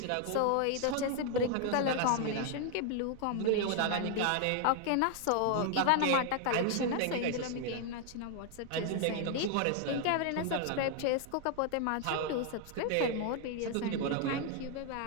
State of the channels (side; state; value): both; different; correlation 0.00